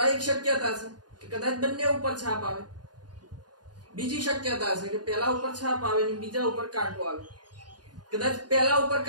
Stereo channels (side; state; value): left; late; 0.69 ms